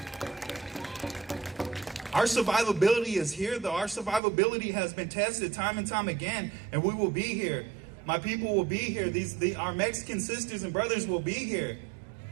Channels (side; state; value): left; drops out; at 4.2 s